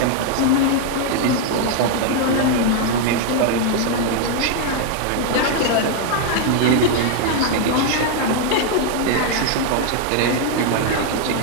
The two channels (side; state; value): both; different; correlation 0.00